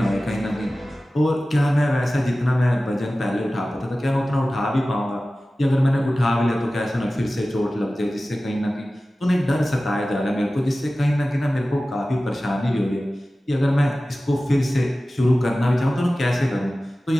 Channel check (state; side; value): normal; both; correlation 0.96